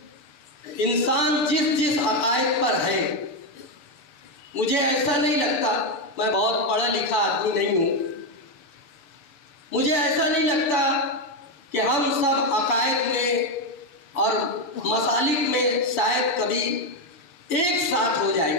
انسان جس عقائد پر ہے، مجھے ایسا نہیں لگتا، میں بہت پڑھا لکھا آدمی نہیں ہوں، مجھے ایسا نہیں لگتا کہ ہم سب عقائد میں اور مسالک میں شاید کبھی ایک ساتھ ہو جائیں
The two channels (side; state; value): right; late; 7.0 ms